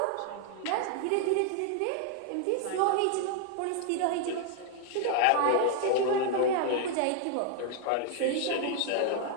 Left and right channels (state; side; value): different; both; correlation 0.00